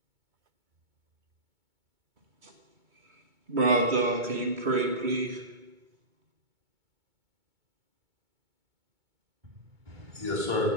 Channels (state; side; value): late; left; 2.2 ms